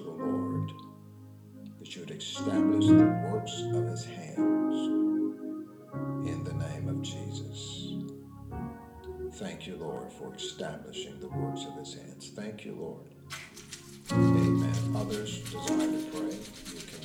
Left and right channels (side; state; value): both; identical; correlation 1.00